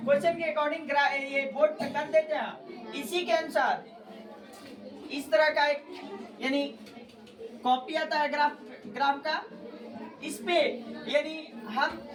के अकॉर्डिंग ये बोर्ड पे कर देते हैं। इसी के अनुसार इस तरह का एक यानी कॉपी आता है ग्राफ का, इस पे यानी हम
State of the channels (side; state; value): both; identical; correlation 1.00